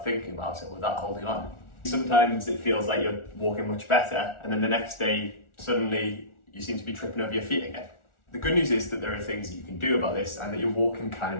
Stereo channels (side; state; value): right; late; 1.4 ms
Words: thinking about it, without holding on? Sometimes it feels like you're walking much better, and then the next day, suddenly you seem to be tripping over your feet again. The good news is that there are things that you can do about this and that your walking can